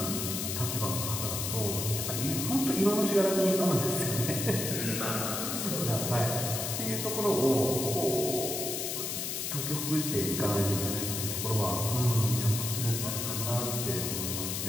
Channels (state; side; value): noise; left; hiss, 2 dB below the sound